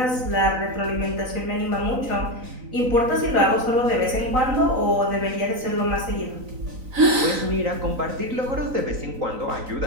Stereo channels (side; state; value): left; late; 3.9 ms